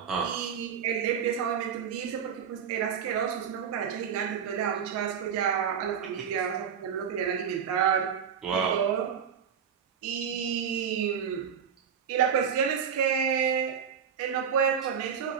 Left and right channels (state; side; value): quieter; left; 7.6 dB